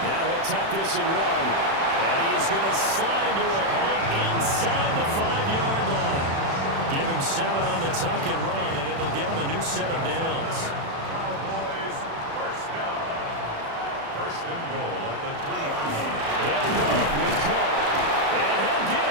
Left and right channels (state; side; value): late; left; 36 ms